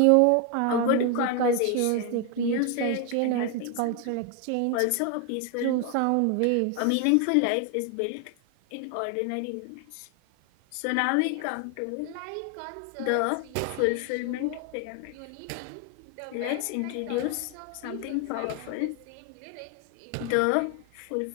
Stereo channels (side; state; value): both; different; correlation 0.01